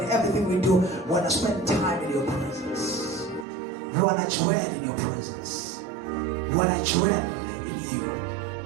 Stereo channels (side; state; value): left; drops out; at 3.5 s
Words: in everything we do. We want to spend time in your presence. We want to dwell in your presence. We want to dwell in you.